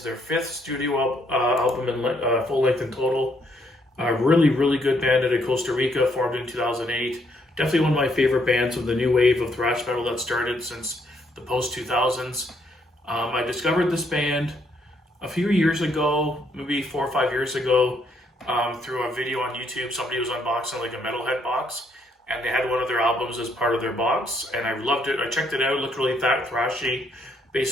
their fifth studio album in full length in total. Really good band out of Costa Rica, formed in 2008. Definitely one of my favorite bands of the new wave of thrash metal that started since the post 2000s. I discovered this band a few years ago, maybe 4 or 5 years ago, through a video on YouTube. Somebody was unboxing like a metalhead box, and they had one of their albums as part of their box, and I loved it. I checked it out, it looked really thrashy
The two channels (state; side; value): normal; both; correlation 0.71